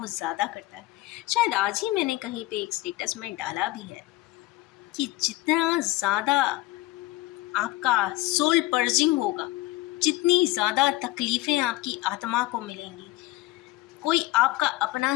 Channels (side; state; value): right; quieter; 18.7 dB